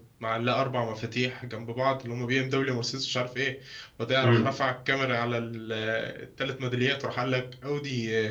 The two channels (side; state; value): both; identical; correlation 1.00